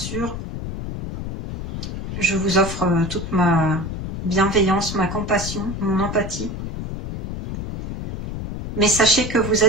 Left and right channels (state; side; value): noise; left; rumble, 7 dB below the sound